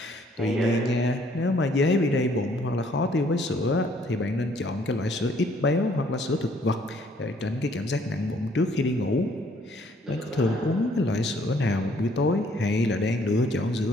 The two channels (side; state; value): both; normal; correlation 0.63